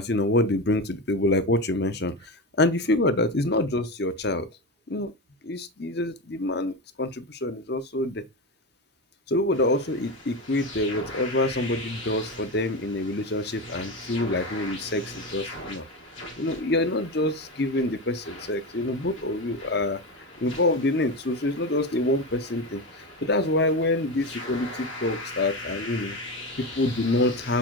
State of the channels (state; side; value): normal; both; correlation 0.20